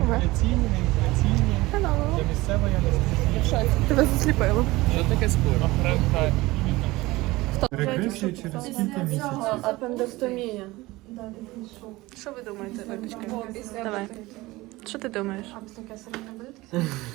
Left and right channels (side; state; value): left; quieter; 20.1 dB